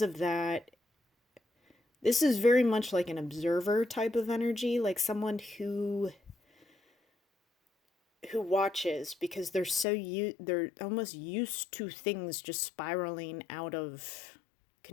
that, this is very much like an observer type of energy, like someone who watches because they're almost used to things just spiraling out of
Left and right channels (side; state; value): right; drops out; at 9.9 s